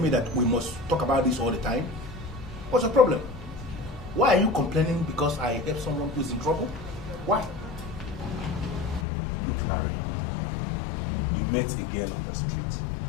me that we must talk about this all the time? What's the problem? Why are you complaining because I help someone who's in trouble? Why? Look, Larry, you met a girl on the street,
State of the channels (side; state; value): right; drops out; at 9.1 s